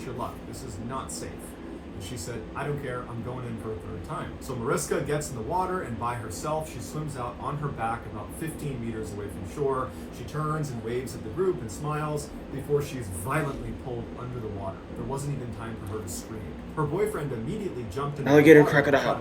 your luck. This is not safe." And she said, "I don't care, I'm going in for a 3rd time." So Mariska gets in the water, and by herself, she swims out on her back about 15 meters away from shore. She turns and waves at the group and smiles before she's violently pulled under the water. There wasn't even time for her to scream. Her boyfriend immediately jumped in Alligator the water to crocodile. try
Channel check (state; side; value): identical; both; correlation 1.00